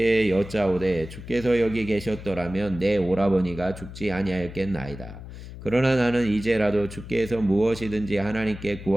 여짜오되 주께서 여기 계셨더라면 내 오라버니가 죽지 아니하였겠나이다. 그러나 나는 이제라도 주께서 무엇이든지 하나님께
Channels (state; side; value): noise; left; hum, 13 dB below the sound